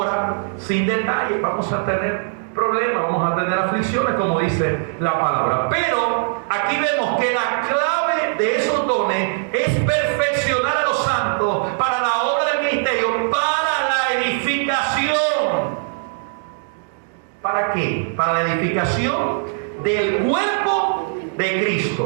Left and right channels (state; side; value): silent; left; digital silence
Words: sin detalle. Vamos a tener problemas, vamos a tener aflicciones, como dice la palabra. Pero aquí vemos que la clave de esos dones es perfeccionar a los santos para la obra del ministerio, para la edificación. ¿Para qué? Para la edificación del cuerpo de